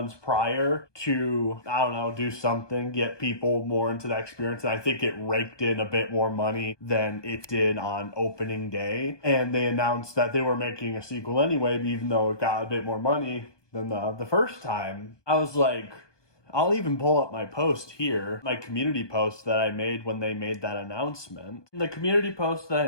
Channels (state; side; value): late; right; 1.2 ms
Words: prior to, I don't know, do something, get people more into that experience. And I think it raked in a bit more money than it did on opening day. And they announced that they were making a sequel anyway, even though it got a bit more money than the first time. I was like, I'll even pull up my post here, my community post that I made when they made that announcement. The community post that I